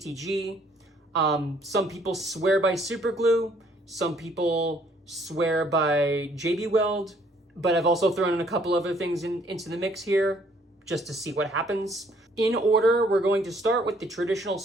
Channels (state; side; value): normal; both; correlation 0.63